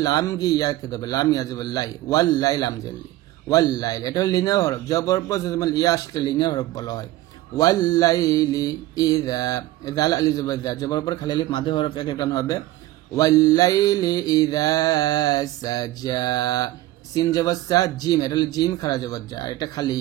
লাম গি ইয়াকে ধরবে, লাম ইয়া জবর লাই, ওয়াল লাই লাম জেলি, ওয়াল লাইল, এটা হলো লিনিয়ার হরফ। জবর পর ইয়া আসলে লিনিয়ার হরফ বলা হয়। ওয়াল লাইলি ইযা, জাল আলি জবর জা, জবর পর খালি আলিফ মাঝে হরফ এক টান হবে। ওয়াল লাইলি ইযা সাজা, সিন জবর সা, জিম, এটা হলো জিম খারা জবর যা, এটা খালি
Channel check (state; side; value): quieter; left; 16.4 dB